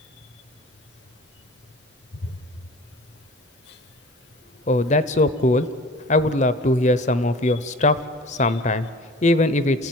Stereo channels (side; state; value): both; normal; correlation 0.43